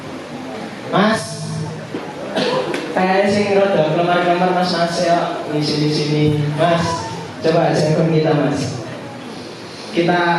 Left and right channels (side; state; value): both; identical; correlation 1.00